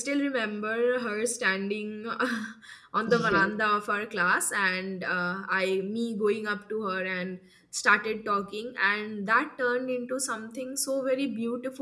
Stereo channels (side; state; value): both; identical; correlation 1.00